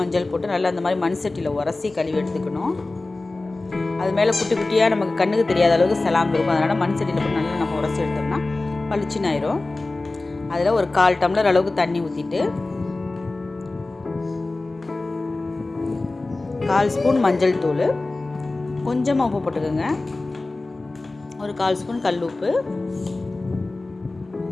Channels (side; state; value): right; quieter; 3.2 dB